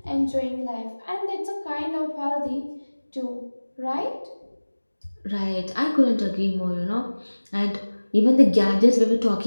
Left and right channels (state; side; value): inverted; both; correlation -1.00